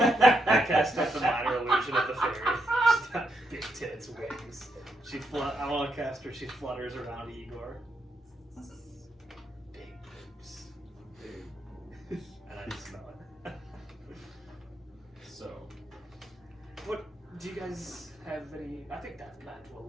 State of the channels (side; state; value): both; normal; correlation 0.80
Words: cast up the minor illusion of the fairy. She's got big tits, wings. I want to cast her. She flutters around Igor. Big boobs. And I just smell it. So, What do you guys have any? I think that plan